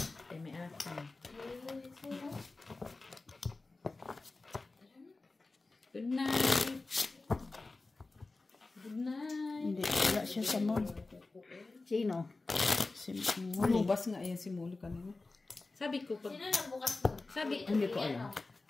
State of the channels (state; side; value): quieter; right; 3.4 dB